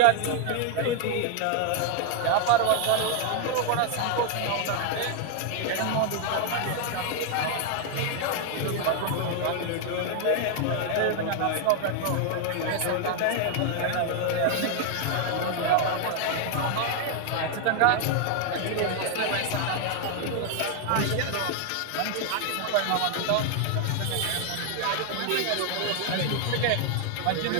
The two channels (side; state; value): both; different; correlation 0.00